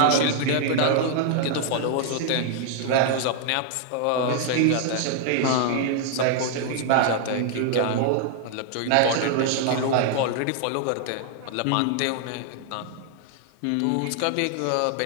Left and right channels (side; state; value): both; different; correlation 0.00